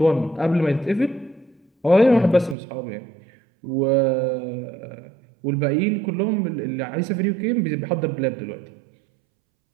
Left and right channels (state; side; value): drops out; left; at 2.6 s